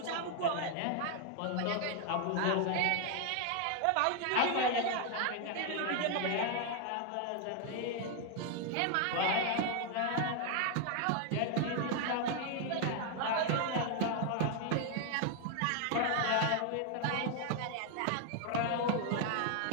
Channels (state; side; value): different; both; correlation 0.00